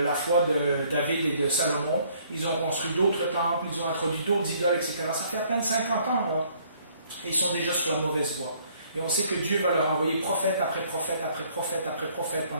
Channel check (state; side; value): inverted; both; correlation -0.62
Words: la foi de David et de Salomon. Ils ont construit d'autres temples, ils ont introduit d'autres idoles, etc. Ça fait à peine 50 ans, là. Et ils sont déjà sur la mauvaise voie. Et on sait que Dieu va leur envoyer prophète après prophète après prophète après prophète